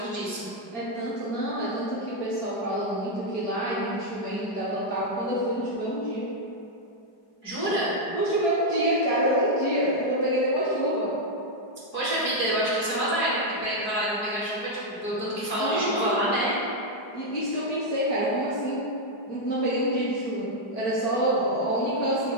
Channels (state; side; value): late; right; 4.7 ms